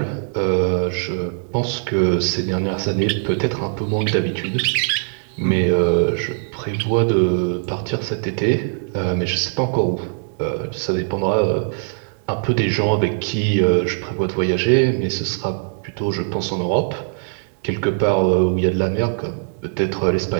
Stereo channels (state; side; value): silent; left; 65 dB below the other